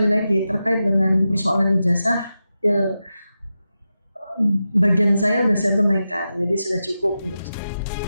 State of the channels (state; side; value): inverted; both; correlation -0.91